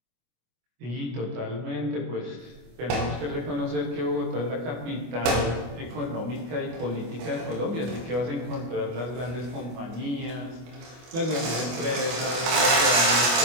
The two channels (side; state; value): left; late; 25 ms